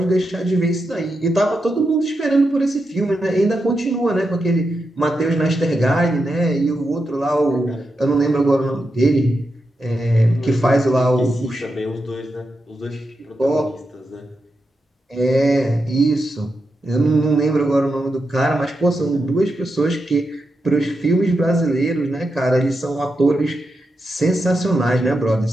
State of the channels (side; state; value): both; normal; correlation 0.87